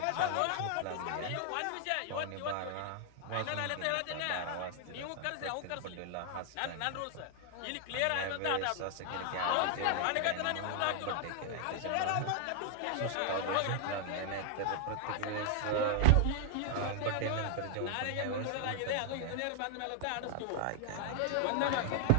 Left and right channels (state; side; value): different; both; correlation 0.00